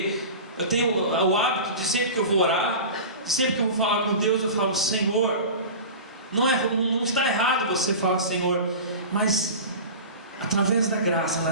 eu tenho o hábito de, sempre que eu vou orar, sempre que eu vou falar com Deus, eu falo: Senhor. Não está errado você falar Senhor, mas através da graça,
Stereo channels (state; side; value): inverted; both; correlation -0.32